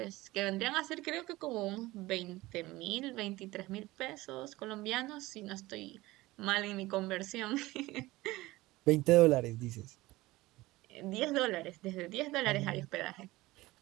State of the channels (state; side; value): quieter; left; 19.2 dB